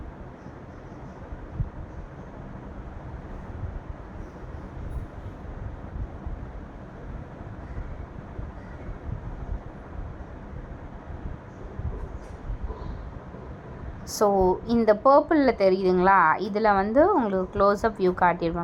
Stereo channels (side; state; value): both; identical; correlation 1.00